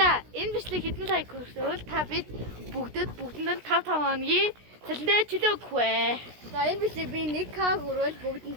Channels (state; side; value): late; left; 16 ms